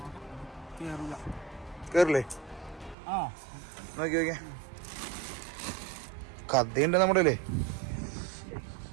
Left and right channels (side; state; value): left; drops out; at 3.0 s